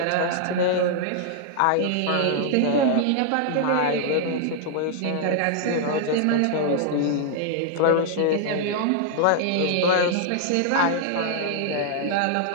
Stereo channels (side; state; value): both; different; correlation -0.01